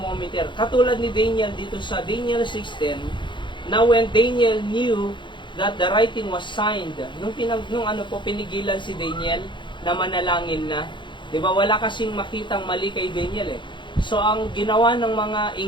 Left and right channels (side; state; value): right; late; 0.23 ms